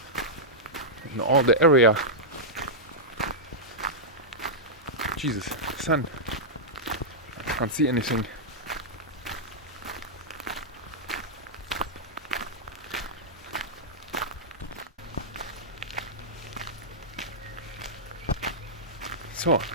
in all the area. Jesus, sun. I can't see anything. So,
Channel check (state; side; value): normal; both; correlation -0.10